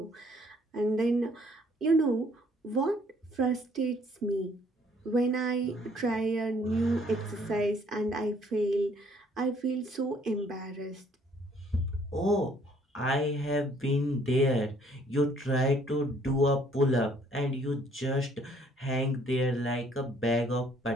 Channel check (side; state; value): both; normal; correlation 0.62